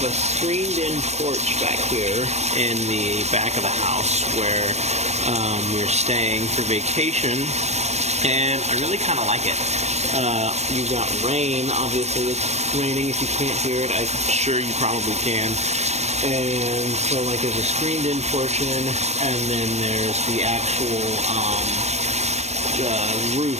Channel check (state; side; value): late; left; 0.32 ms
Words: a screened-in porch back here in the back of the house where we're staying for vacation, and I really kind of like it. You've got rain, obviously it's raining. If you can't hear it, I'm sure you probably can. And so like there's a screened-in portion, and then there's the actual roof